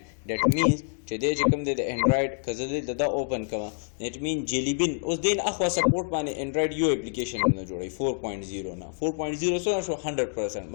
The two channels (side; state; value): right; silent; digital silence